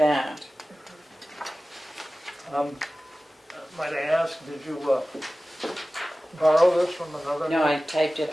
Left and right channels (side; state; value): both; normal; correlation 0.96